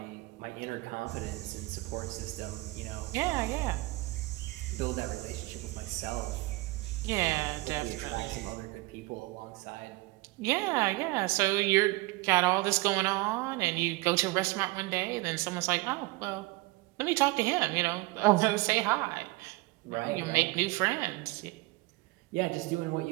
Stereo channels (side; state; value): left; quieter; 22.4 dB